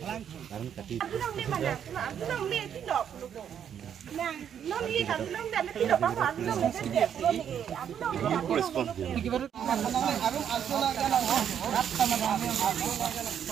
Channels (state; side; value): quieter; left; 8.8 dB